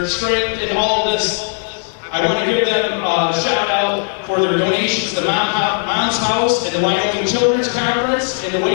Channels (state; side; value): silent; right; 65 dB below the other